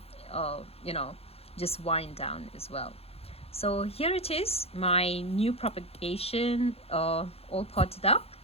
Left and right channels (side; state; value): right; late; 0.29 ms